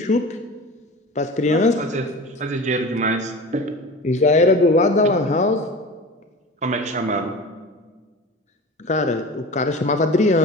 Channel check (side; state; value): both; normal; correlation 0.34